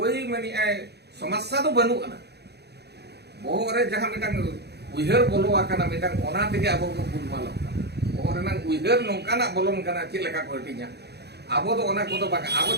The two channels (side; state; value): left; late; 0.48 ms